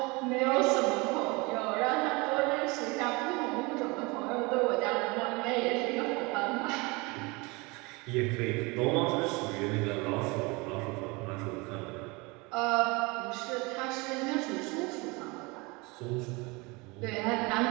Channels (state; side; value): quieter; left; 26.1 dB